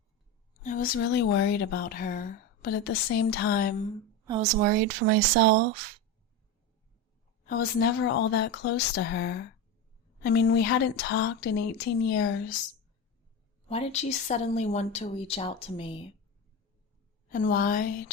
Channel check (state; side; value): normal; both; correlation 0.20